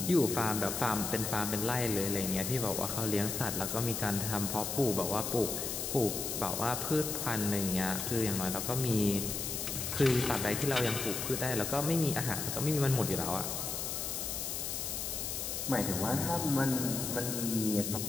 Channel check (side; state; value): left; noise; hiss, 3 dB below the sound